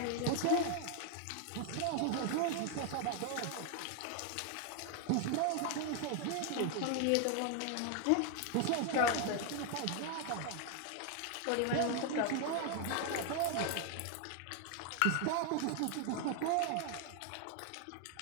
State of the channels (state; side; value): different; both; correlation 0.00